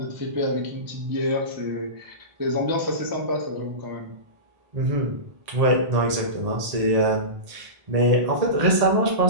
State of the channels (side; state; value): left; late; 1.8 ms